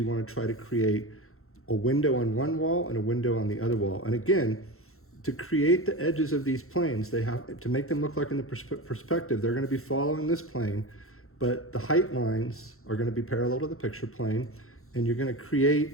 want to try to create a window on one wall and a window on the other wall. And again, to create the edges of these planes, they have to make them look like in the perspective, they're going to be following this plane, but the height lines are going to be parallel to the picture plane, and you're going to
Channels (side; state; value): right; late; 0.62 ms